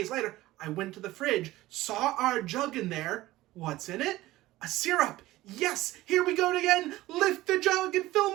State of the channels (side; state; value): left; quieter; 17.1 dB